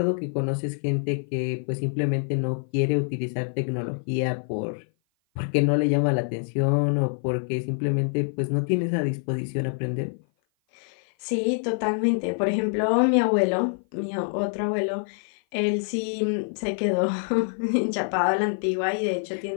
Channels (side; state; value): right; silent; 56 dB below the other